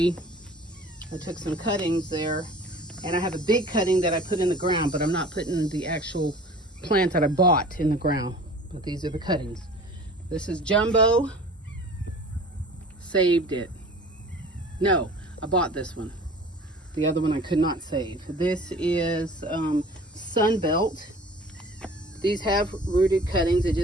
I took some cuttings there, and I have a big cutting that I put in the ground, but I'm not putting the actual plant that I bought in the ground. But these are the cuttings. This is Jumbo. Saved it. No, I bought this one. The other one I could not save. This is Sunbelt. These have rooted cuttings. They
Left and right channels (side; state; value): both; normal; correlation 0.44